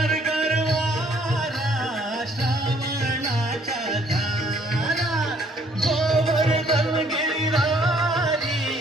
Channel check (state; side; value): normal; both; correlation 0.63